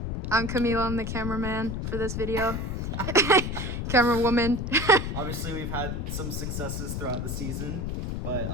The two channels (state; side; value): noise; left; rumble, 3 dB below the sound